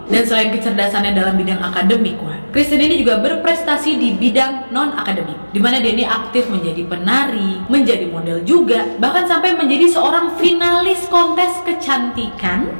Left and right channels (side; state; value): both; inverted; correlation -1.00